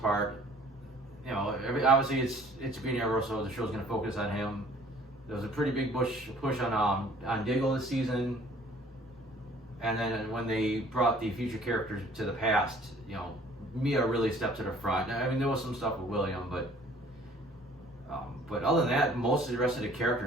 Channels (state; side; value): normal; both; correlation 0.54